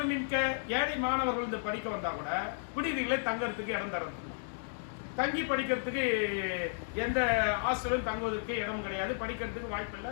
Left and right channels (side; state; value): right; silent; digital silence